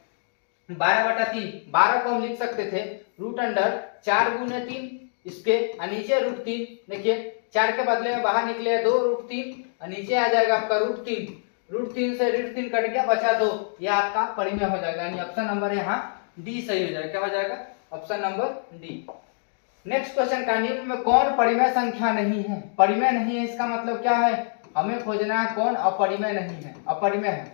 12/3, 12 को हम लिख सकते थे रूट अंडर 4 गुने 3, इसके नीचे रूट 3। देखिए 4 के बदले में बाहर निकले 2 रूट 3, नीचे आ जाएगा आपका रूट 3, रूट 3 से रूट 3 कट गया, बचा 2, यह आपका परिमेय हो जाएगा। यानी ऑप्शन नंबर यहाँ डी सही हो जाएगा। क्या हो जाएगा? Option number D. Next question का निम्न में कौन परिमेय संख्या नहीं है? परिमेय नहीं है इसका मतलब क्या है? हमें खोजना है कौन अपरिमेय नहीं है, अपरिमेय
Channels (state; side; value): silent; right; digital silence